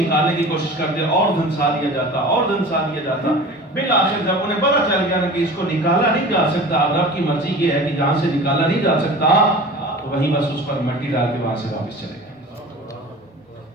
نکالنے کی کوشش کرتے اور دھنسا دیا جاتا، اور دھنسا دیا جاتا. بالآخر جب انہیں پتہ چل گیا نا کہ اس کو نکالا نہیں جا سکتا، رب کی مرضی یہ ہے کہ جہاں سے نکالا نہیں جا سکتا، تو وہیں بس اس پر مٹی ڈال کے وہاں سے واپس چلے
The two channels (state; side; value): normal; both; correlation 0.38